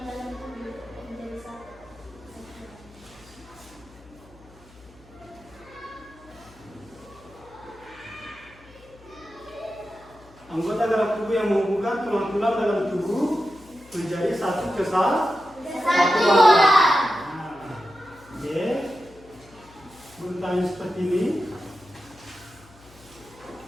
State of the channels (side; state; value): left; noise; hum, 24 dB below the sound